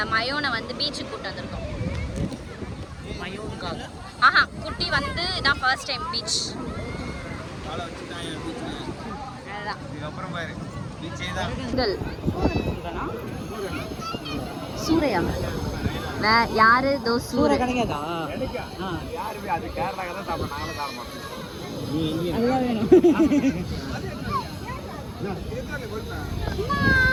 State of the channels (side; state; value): both; identical; correlation 1.00